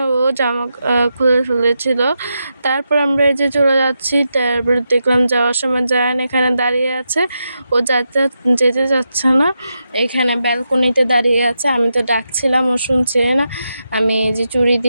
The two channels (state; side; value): inverted; both; correlation -0.86